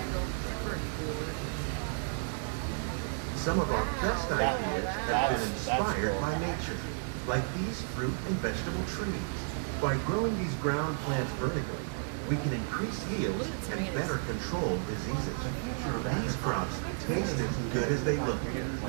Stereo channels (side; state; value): left; silent; 56 dB below the other